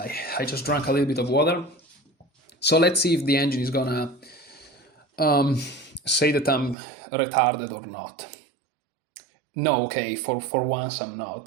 I just drank a little bit of water. So let's see if the engine is gonna say that I'm retarded or not. No, okay, for once I'm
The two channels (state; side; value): drops out; left; at 6.8 s